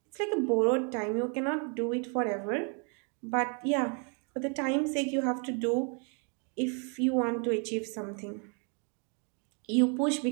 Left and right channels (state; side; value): quieter; left; 38.0 dB